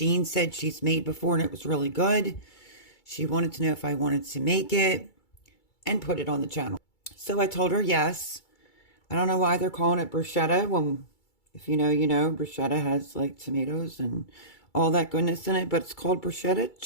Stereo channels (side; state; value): right; late; 2.3 ms